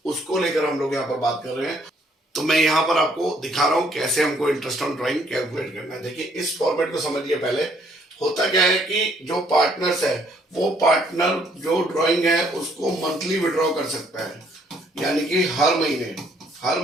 उसको लेकर हम लोग यहाँ पर बात कर रहे हैं। तो मैं यहाँ पर आपको दिखा रहा हूँ कैसे हमको इंटरेस्ट ऑन ड्राइंग कैलकुलेट करना है। देखिए इस फॉर्मेट को समझिए। पहले होता क्या है कि जो पार्टनर्स है, वो पार्टनर जो ड्राइंग है उसको मंथली विड्रॉ कर सकता है, यानी कि हर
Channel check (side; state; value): both; normal; correlation 0.66